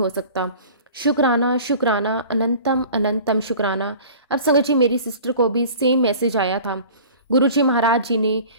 सकता। शुक्राना शुक्राना, अनंतम अनंतम शुक्राना। अब संगत जी मेरी सिस्टर को भी सेम मैसेज आया था। गुरुजी महाराज जी ने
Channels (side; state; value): both; inverted; correlation -0.43